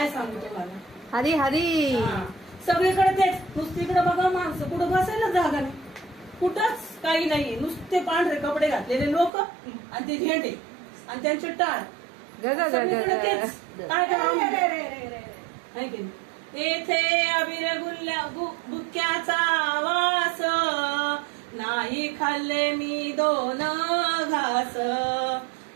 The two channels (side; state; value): left; drops out; at 9.3 s